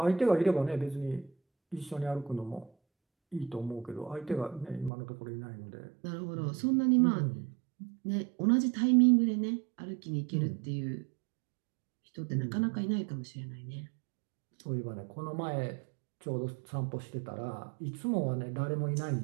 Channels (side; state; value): left; drops out; at 4.9 s